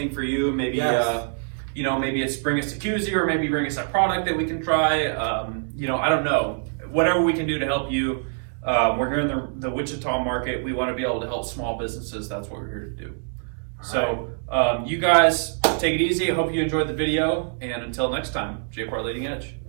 for you. Maybe maybe it's bring us a koozie, or maybe bring us a product that we can try. I don't know. Whatever we can do to help you. We're here in the Wichita market. We want to be able to help small businesses. That's what we're here to do. So you guys take it easy. I hope you enjoyed the video, and until next time, J-Part Leading Edge.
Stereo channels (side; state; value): left; silent; 62 dB below the other